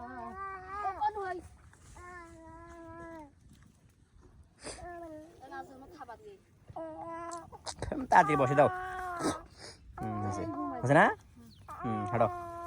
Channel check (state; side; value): identical; both; correlation 1.00